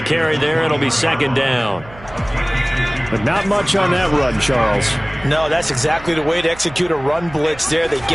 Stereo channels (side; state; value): right; noise; hum, 19 dB below the sound